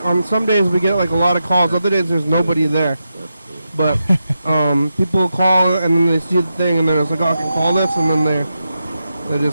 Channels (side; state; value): both; inverted; correlation -0.88